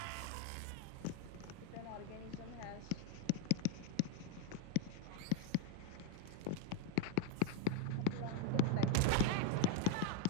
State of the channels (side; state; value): both; different; correlation 0.00